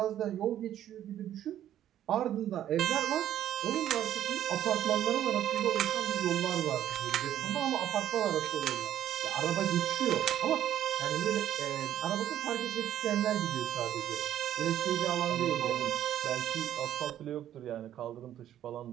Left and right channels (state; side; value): quieter; left; 11.5 dB